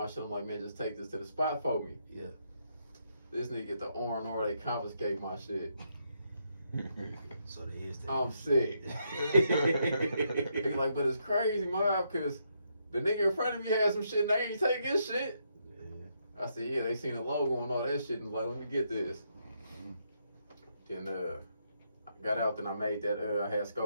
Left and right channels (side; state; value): both; inverted; correlation -0.77